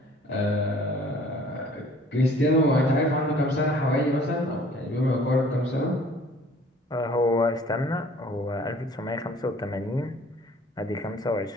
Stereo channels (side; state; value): both; normal; correlation 0.53